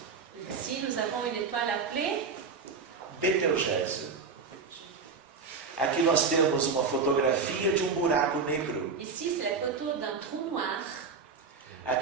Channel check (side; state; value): left; quieter; 5.1 dB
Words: Ici, nous avons une étoile appelée Betelgeuse. Aqui nós temos uma fotografia de um buraco negro. ici, c'est la photo d'un trou noir.